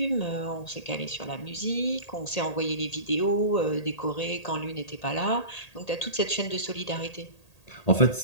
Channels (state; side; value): late; right; 1.8 ms